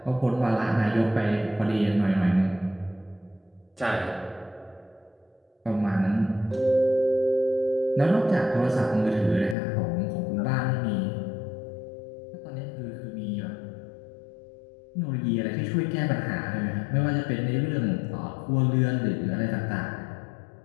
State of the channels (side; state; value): right; drops out; at 9.6 s